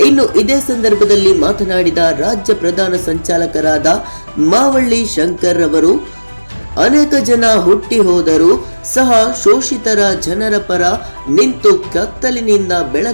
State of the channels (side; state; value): both; inverted; correlation -1.00